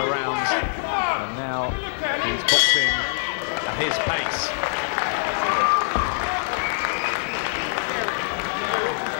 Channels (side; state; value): right; silent; digital silence